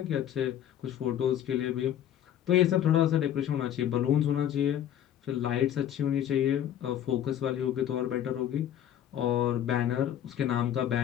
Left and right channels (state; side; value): quieter; right; 10.6 dB